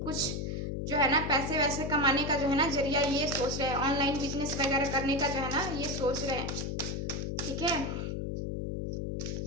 कुछ जो है ना पैसे वैसे कमाने का जो है ना जरिया ये सोच रहे हैं, ऑनलाइन बिजनेस वगैरह करने का जो है ना ये सोच रहे हैं, ठीक है।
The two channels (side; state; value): left; noise; hum, 3 dB below the sound